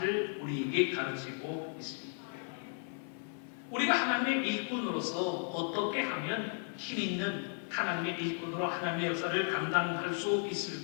우리에게 가르치고 있습니다. 우리가 하나님의 일꾼으로서 어떻게 하면 힘 있는 하나님의 일꾼으로 하나님의 역사를 감당할 수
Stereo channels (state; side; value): silent; right; 54 dB below the other